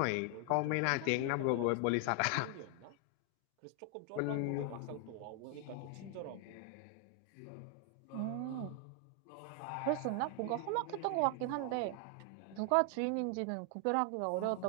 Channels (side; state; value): both; different; correlation 0.00